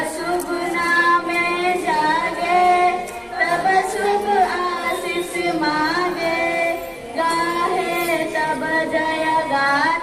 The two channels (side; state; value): both; identical; correlation 1.00